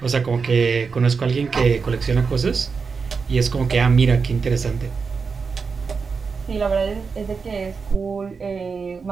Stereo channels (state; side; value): quieter; left; 5.2 dB